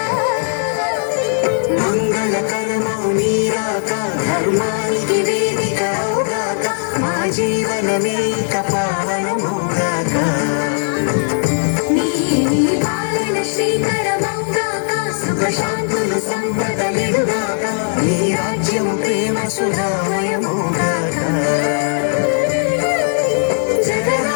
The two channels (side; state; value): right; silent; 68 dB below the other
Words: మంగళకరమౌ నీరాక ధర్మానికి వేదిక అవుగాక మా జీవనమే ఇక పావనమౌగాక నీ పాలన శ్రీకరమౌగాక సుఖ శాంతులు సంపదలిడుగాక నీ రాజ్యము ప్రేమ సుధామయమౌగాక